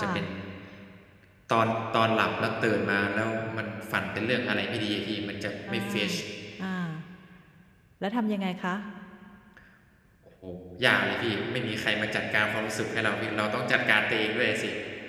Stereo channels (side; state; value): both; identical; correlation 1.00